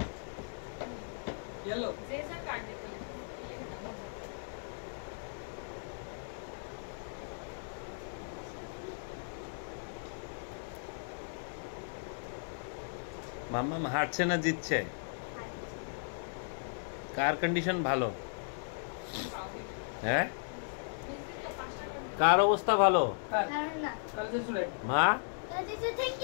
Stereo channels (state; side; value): silent; right; digital silence